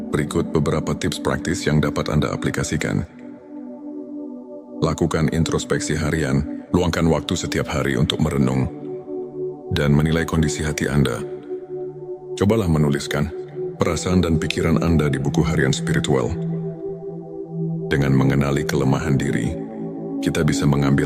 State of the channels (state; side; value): identical; both; correlation 1.00